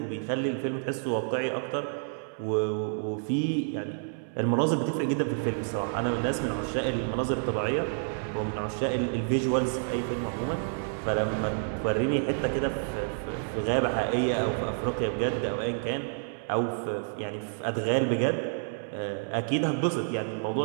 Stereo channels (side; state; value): left; silent; 58 dB below the other